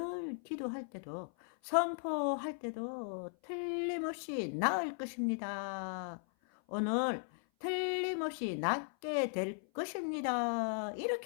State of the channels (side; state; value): right; silent; 53 dB below the other